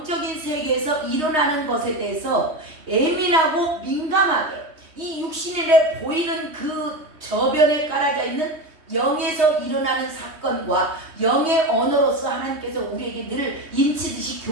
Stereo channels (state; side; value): late; left; 3.2 ms